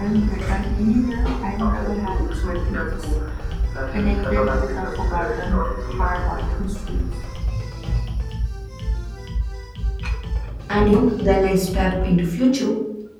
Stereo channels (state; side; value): identical; both; correlation 1.00